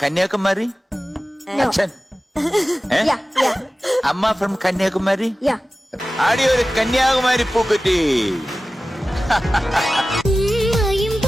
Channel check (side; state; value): both; normal; correlation 0.95